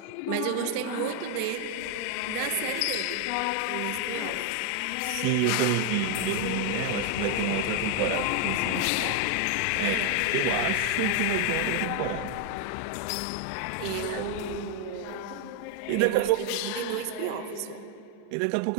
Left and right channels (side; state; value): both; different; correlation 0.00